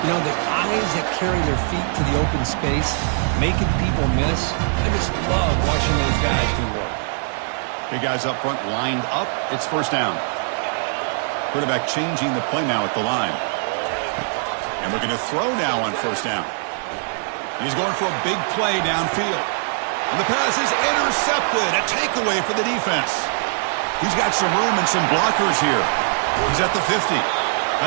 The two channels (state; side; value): silent; left; 64 dB below the other